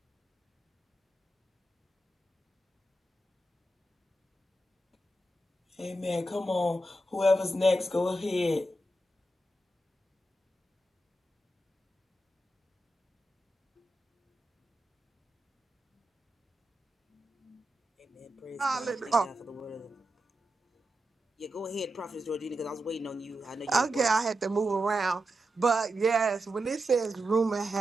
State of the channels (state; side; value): normal; both; correlation 0.88